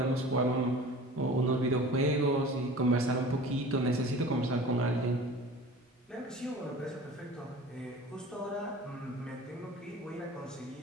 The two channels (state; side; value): normal; both; correlation 0.41